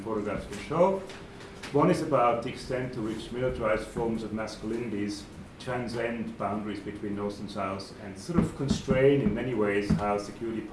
photographs will show. One is about the extent to which militarized forms of masculinities transcend boundaries between North and South and sort of constrain in many ways how security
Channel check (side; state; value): both; identical; correlation 1.00